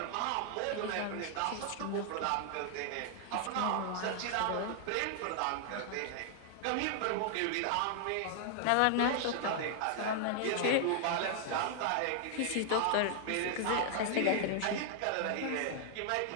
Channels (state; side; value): different; both; correlation 0.00